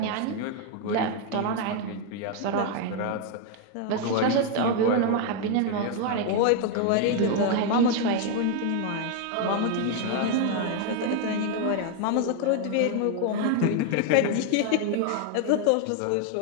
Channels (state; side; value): different; both; correlation 0.01